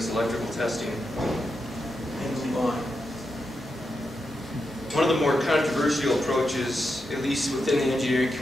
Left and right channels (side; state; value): both; normal; correlation 0.86